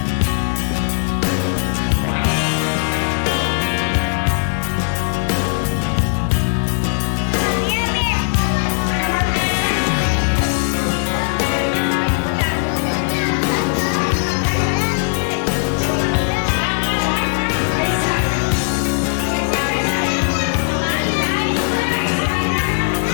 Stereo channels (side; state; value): right; silent; 67 dB below the other